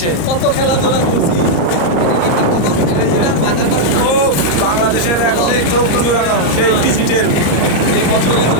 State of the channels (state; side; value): late; right; 34 ms